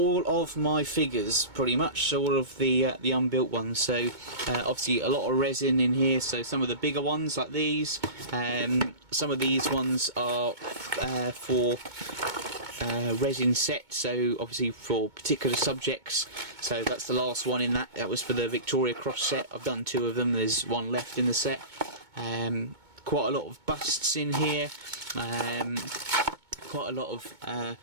of my figures, pretty much, so all of the unbuilt ones. So obviously a lot of resin in here, so some of the bigger ones like these, some of these ones are for resin set, so obviously for particular subjects. So that's the last one in that was for the Victoria Cross set. I've done 2 of them, there's one left in the set. Quite a lot of busts in here, quite a lot of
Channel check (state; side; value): late; left; 2.2 ms